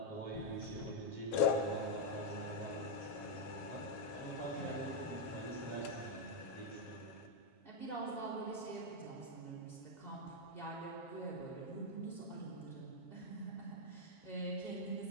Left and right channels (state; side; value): late; right; 7.3 ms